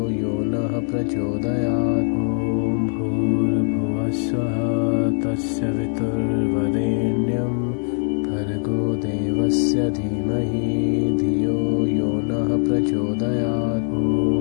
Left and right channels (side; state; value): right; silent; 64 dB below the other